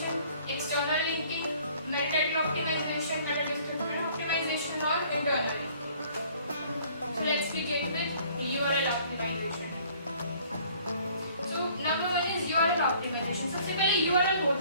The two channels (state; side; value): inverted; both; correlation -0.57